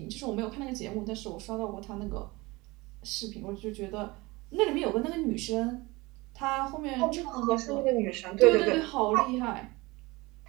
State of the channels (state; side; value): quieter; left; 22.8 dB